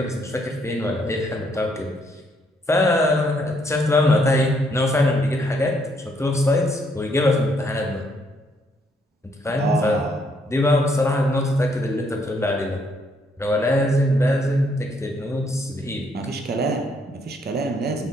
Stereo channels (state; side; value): normal; both; correlation 0.71